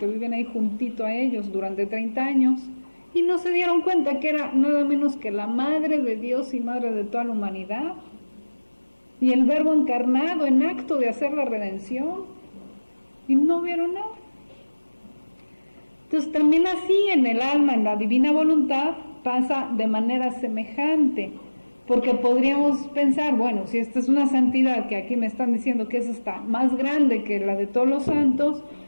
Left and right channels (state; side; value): inverted; both; correlation -1.00